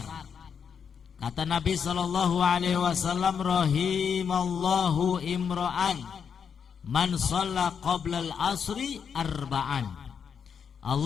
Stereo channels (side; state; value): right; quieter; 6.9 dB